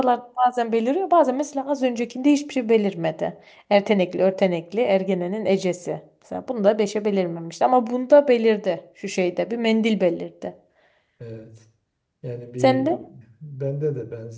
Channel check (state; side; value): identical; both; correlation 1.00